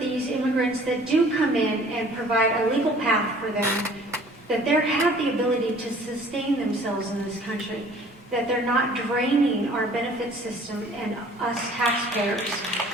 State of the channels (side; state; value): both; normal; correlation 0.52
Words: immigrants that do come in and provide a legal path for them, that they have the ability to sustain themselves in this country, that they're not draining our benefit system and us taxpayers.